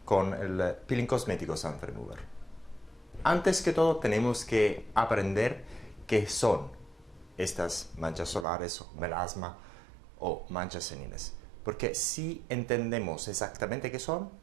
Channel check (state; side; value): drops out; left; at 8.5 s